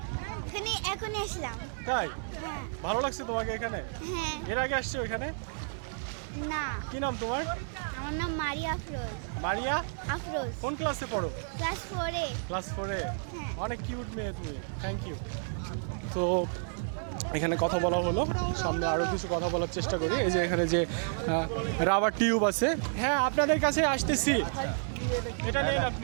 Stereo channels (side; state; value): left; silent; 57 dB below the other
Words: এখানে এখনই আসলাম। তাই? ভালো লাগছে তোমাকে এখানে? এর আগে আসছো এখানে? না। কি নাম তোমার? আমার নাম মারিয়া আফরোজ। মারিয়া আফরোজ। কোন ক্লাসে পড়ো? ক্লাস 4-এ। ক্লাস 4-এ। অনেক কিউট মেয়ে তুমি, থ্যাংক ইউ। তো এখানে কথা বলা হলো, সামনে আরও কিছু কথা বলার চেষ্টা করি। এই যে এখানে যে রাবার টিউব আছে, হ্যাঁ আপনাদের কাছে আসতেছি। এটা নেন,